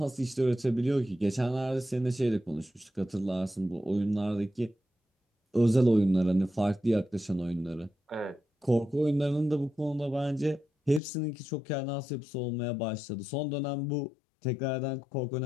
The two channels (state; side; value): drops out; right; at 11.0 s